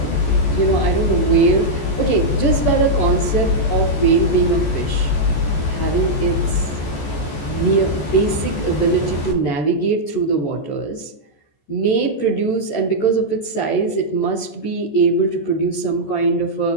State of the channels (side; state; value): right; late; 14 ms